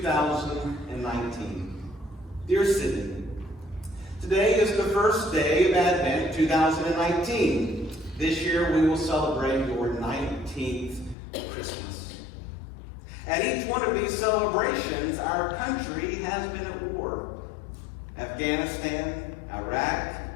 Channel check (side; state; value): right; drops out; at 11.2 s